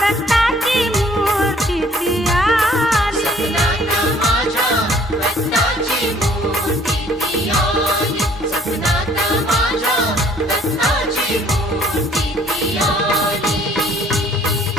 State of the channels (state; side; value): normal; both; correlation 0.59